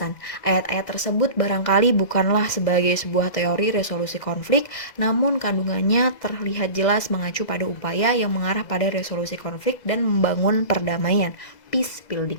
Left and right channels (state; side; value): late; right; 2.0 ms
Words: Ayat-ayat tersebut barangkali bukanlah sebagai sebuah teori resolusi konflik, namun kandungannya terlihat jelas mengacu pada upaya yang mengarah pada resolusi konflik dan membangun perdamaian, peace